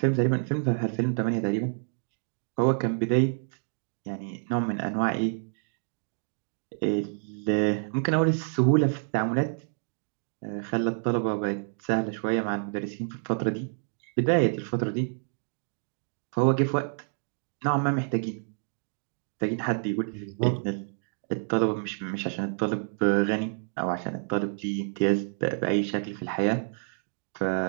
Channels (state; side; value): silent; left; digital silence